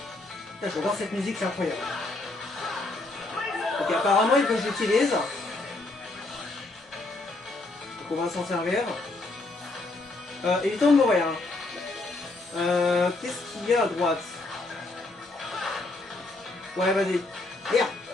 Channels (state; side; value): quieter; right; 3.0 dB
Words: Putain, j'adore cette musique, c'est incroyable. Ok, apparemment, il faut que j'utilise. Donc on va s'en servir. Évitons de mourir. Hein. Qu'est-ce qu'il y a à droite? Ouais, vas-y. Merde.